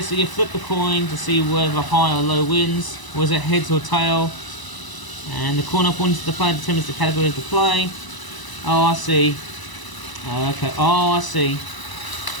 so you flip the coin to see whether high or low wins. Was it heads or tail? And the corner points to the player determines the category of the play. Oh, I see. Okay, oh, I see.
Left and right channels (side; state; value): right; late; 1.0 ms